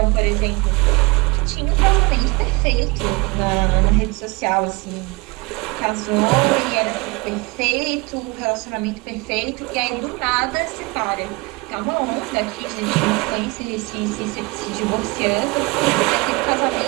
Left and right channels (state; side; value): quieter; left; 25.7 dB